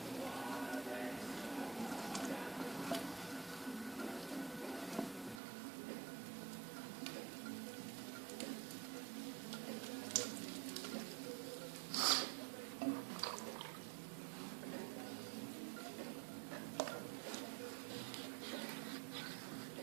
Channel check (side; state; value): left; drops out; at 5.4 s